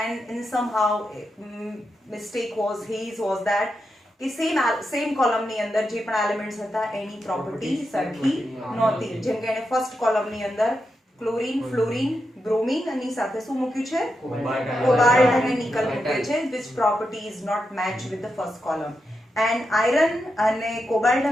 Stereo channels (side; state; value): both; normal; correlation 0.86